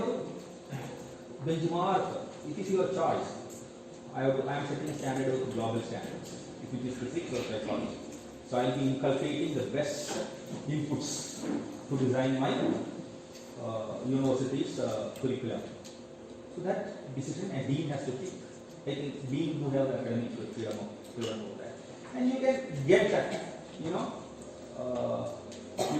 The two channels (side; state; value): both; identical; correlation 1.00